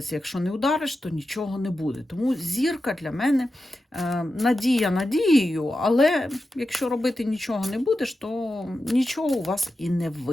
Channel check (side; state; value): both; normal; correlation 0.91